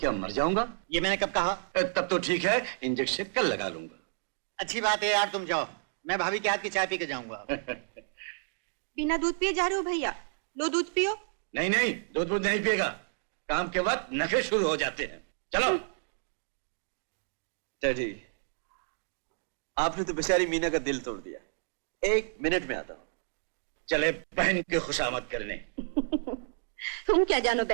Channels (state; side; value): silent; left; digital silence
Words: मर जाऊंगा? ये मैंने कब कहा? तब तो ठीक है, इंजेक्शन कल लगा लूंगा। अच्छी बात है यार, तुम जाओ, मैं भाभी के हाथ की चाय पी के जाऊंगा। बिना दूध पिए जा रहे हो भैया? लो दूध पियो। नहीं नहीं, दूध नहीं पिएगा। काम के वक्त नखरे शुरू हो जाते हैं। चलो। डैडी, आपने तो बेचारी मीना का दिल तोड़ दिया। 1 मिनट में आता हूं। चले बहन की खुशामद करने। तुम क्या जानो